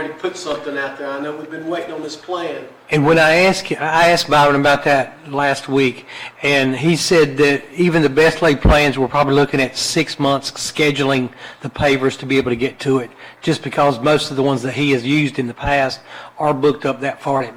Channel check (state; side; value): identical; both; correlation 1.00